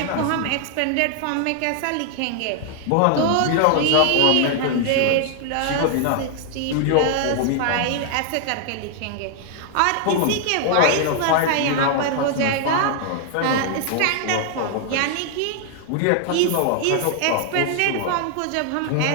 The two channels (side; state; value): both; different; correlation 0.00